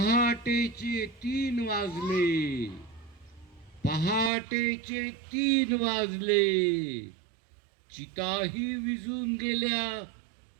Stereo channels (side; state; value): left; drops out; at 4.3 s